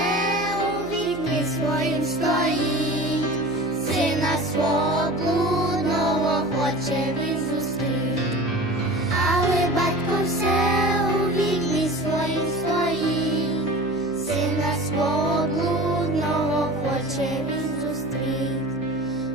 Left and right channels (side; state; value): left; noise; hum, 19 dB below the sound